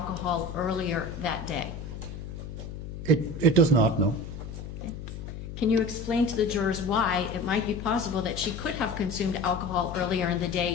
earlier that day? It does not, no. Okay. Can you explain to the jurors why it might be possible that she could have consumed alcohol earlier in the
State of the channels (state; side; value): noise; left; hum, 9 dB below the sound